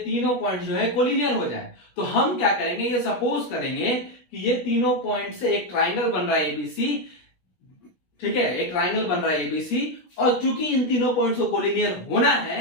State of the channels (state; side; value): late; right; 17 ms